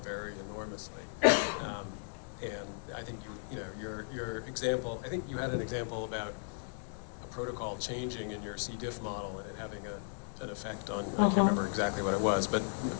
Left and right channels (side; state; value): right; silent; digital silence